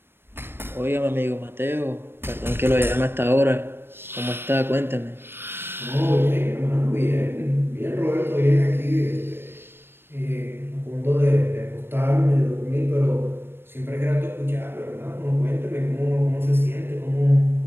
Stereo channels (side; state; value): left; late; 0.11 ms